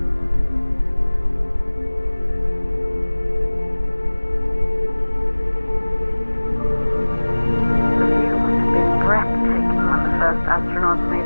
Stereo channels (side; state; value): both; inverted; correlation -1.00